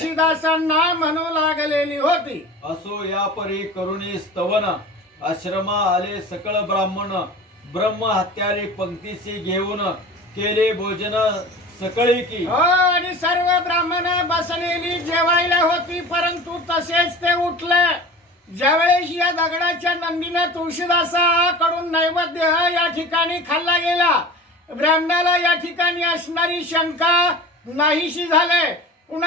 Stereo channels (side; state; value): both; normal; correlation 0.36